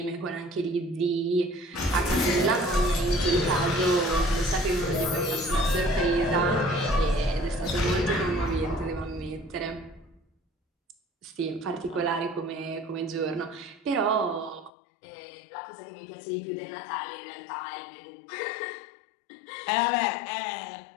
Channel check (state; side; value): drops out; right; at 14.7 s